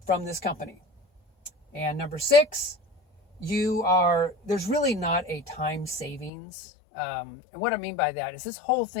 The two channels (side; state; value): right; drops out; at 6.3 s